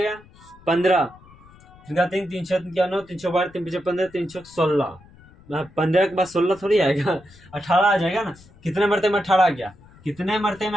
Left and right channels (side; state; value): left; noise; rumble, 25 dB below the sound